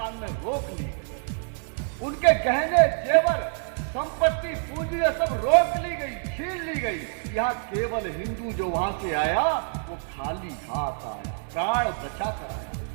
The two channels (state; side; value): silent; left; 60 dB below the other